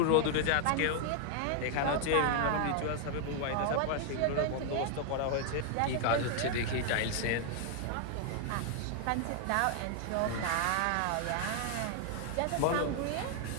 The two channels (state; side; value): different; both; correlation 0.00